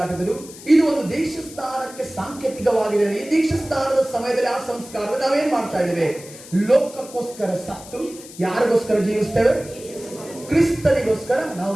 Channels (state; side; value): noise; left; hiss, 17 dB below the sound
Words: ಇದು ಒಂದು ದೀಕ್ಷಾಸ್ನಾನಕ್ಕೆ ಸಾಂಕೇತಿಕವಾಗಿದೆ. ಈ ದೀಕ್ಷಾಸ್ನಾನದ ಸಮಯದಲ್ಲಿ ಆ ಸಂಸ್ಕಾರದಲ್ಲಿ ನಾವೇನ್ ಮಾಡ್ತಾ ಇದ್ದೇವೆ? ಲೋಕಕ್ಕೋಸ್ಕರ ಸತ್ತು ಯಾರಿಗೋಸ್ಕರ ಜೀವಿಸ್ತೇವೆ? ಕ್ರಿಸ್ತನಿಗೋಸ್ಕರ ನಾವು